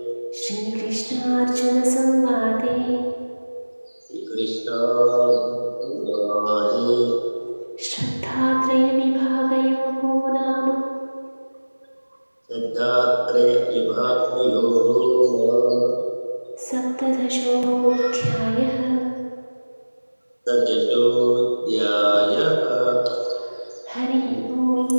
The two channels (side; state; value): both; inverted; correlation -1.00